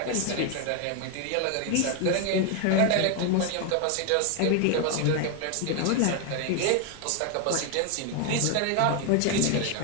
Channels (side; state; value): both; different; correlation 0.01